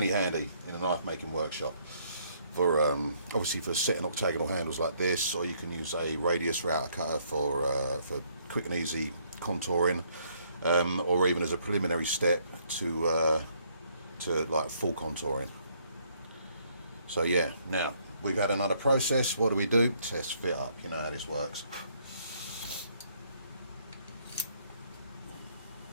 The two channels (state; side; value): inverted; both; correlation -0.68